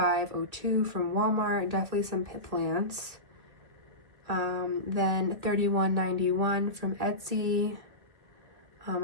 from Walmart, definitely some pit plants. Then $31.91 from Etsy.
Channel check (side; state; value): left; late; 1.8 ms